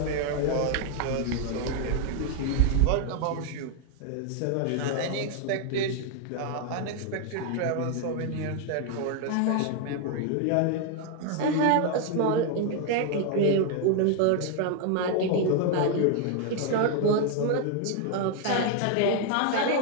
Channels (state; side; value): different; both; correlation 0.00